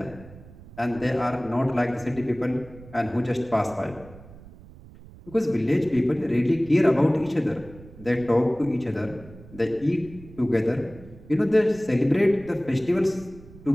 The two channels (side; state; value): right; noise; rumble, 19 dB below the sound